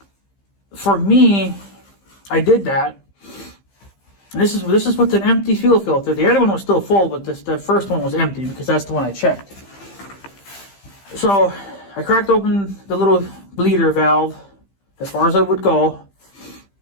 for me, I did that. And this is with an empty fuel filter. The other one was still full, but the first one was empty because that's the one I checked. So I cracked open the little bleeder valve as far as I would go.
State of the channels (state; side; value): late; right; 15 ms